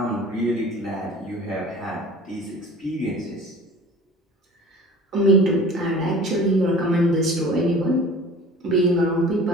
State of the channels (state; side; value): normal; both; correlation 0.43